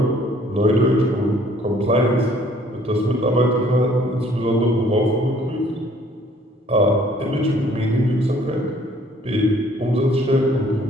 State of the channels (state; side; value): normal; both; correlation 0.59